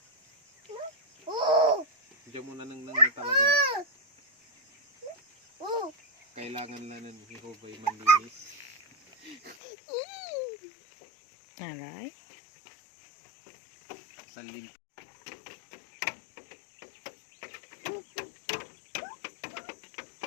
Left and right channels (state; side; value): drops out; right; at 9.6 s